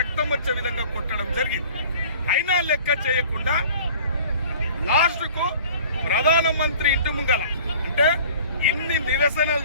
వచ్చే విధంగా కొట్టడం జరిగింది. అయినా లెక్క చేయకుండా లాస్ట్కు ప్రధానమంత్రి ఇంటి ముంగల అంటే ఇన్ని నిరసనలు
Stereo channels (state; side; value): inverted; both; correlation -0.47